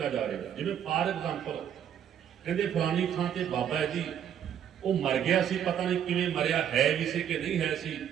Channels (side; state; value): left; quieter; 9.4 dB